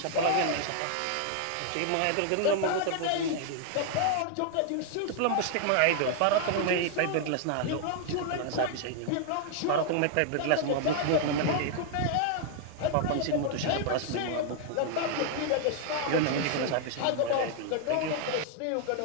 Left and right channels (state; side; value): different; both; correlation 0.00